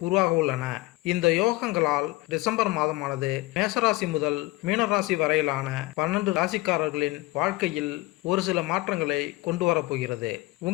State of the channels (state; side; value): quieter; right; 20.4 dB